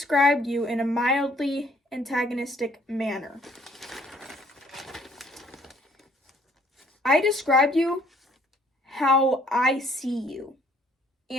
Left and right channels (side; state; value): both; normal; correlation 0.62